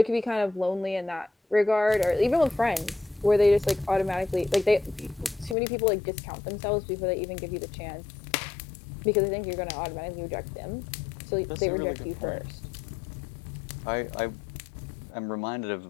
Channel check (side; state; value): right; drops out; at 5.6 s